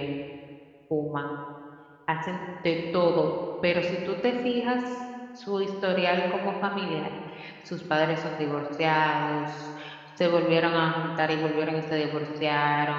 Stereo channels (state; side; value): identical; both; correlation 1.00